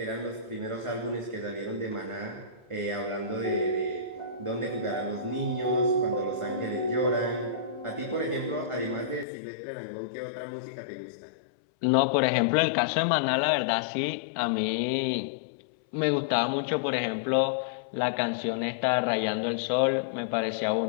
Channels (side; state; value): right; drops out; at 9.2 s